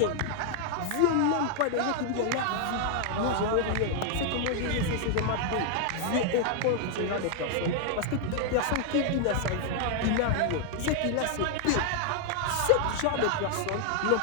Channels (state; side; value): different; both; correlation 0.00